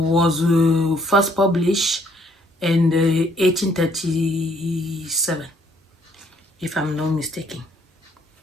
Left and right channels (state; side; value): normal; both; correlation 0.66